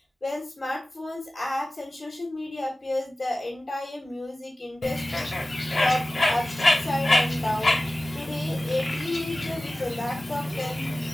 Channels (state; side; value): normal; both; correlation 0.96